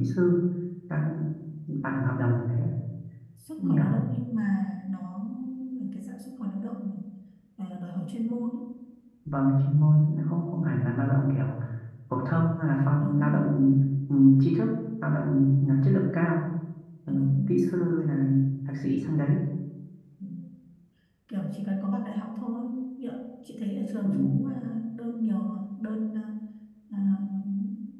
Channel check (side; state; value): both; identical; correlation 1.00